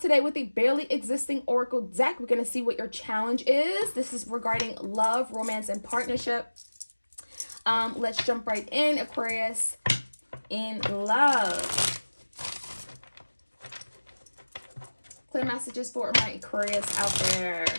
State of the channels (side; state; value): both; inverted; correlation -1.00